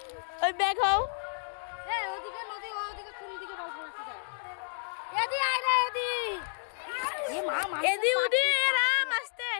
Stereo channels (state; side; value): silent; right; digital silence